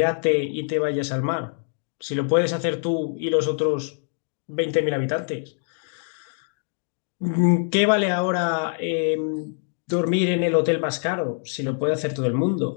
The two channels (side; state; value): right; silent; digital silence